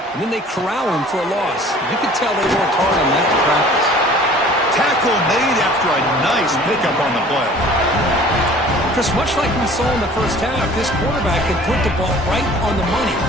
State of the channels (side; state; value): both; normal; correlation 0.48